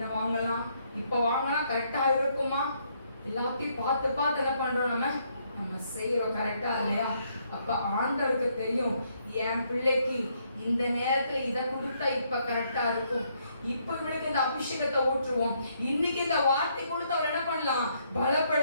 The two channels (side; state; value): both; inverted; correlation -0.72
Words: வாங்கலாம், இப்ப வாங்கினா கரெக்டா இருக்குமா? எல்லாத்தையும் பார்த்து பார்த்து என்ன பண்றோம், நம்ம செய்யறோம் கரெக்டா இல்லையா? அப்ப ஆண்டவருக்கு தெரியும், என் பிள்ளைக்கு இந்த நேரத்துல இதை கொடுத்தா இப்ப கரெக்டா இருக்கும், இப்ப இவனுக்கு இந்த அபிஷேகத்தை ஊற்றுவோம், இன்னைக்கு இந்த வார்த்தை கொடுத்து அவர் என்ன பண்ணலாம்,